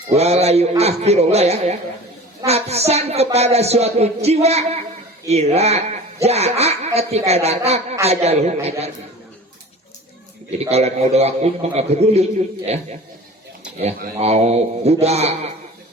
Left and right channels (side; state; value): both; normal; correlation 0.40